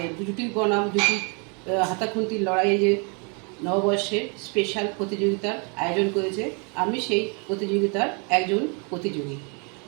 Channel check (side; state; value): left; quieter; 35.5 dB